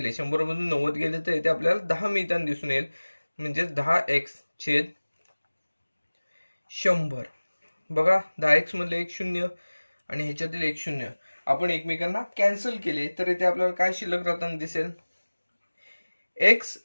100 मधून 90 गेले तर इथे आपल्याला 10 मिळताना दिसून येईल. म्हणजे 10x/100. बघा, 10x मधले एक 0 आणि ह्याच्यातील एक 0 आपण एकमेकांना कॅन्सल केले तर इथे आपल्याला काय शिल्लक राहताना दिसेल, x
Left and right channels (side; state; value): both; inverted; correlation -1.00